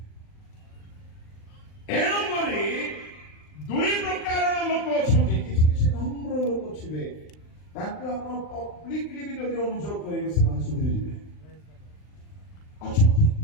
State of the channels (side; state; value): right; late; 39 ms